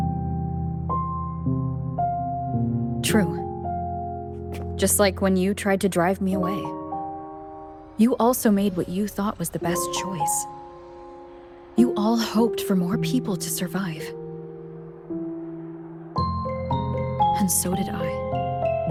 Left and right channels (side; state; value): both; identical; correlation 1.00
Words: True. Just like when you tried to drive me away. You also made what you thought was the best choice. You all hoped for more people to survive. And so did I.